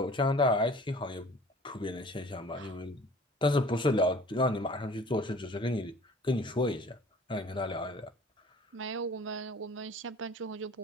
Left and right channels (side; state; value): both; normal; correlation 0.48